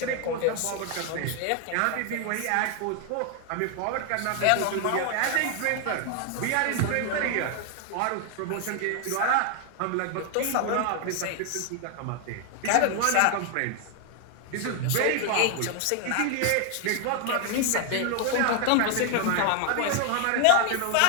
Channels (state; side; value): different; both; correlation 0.00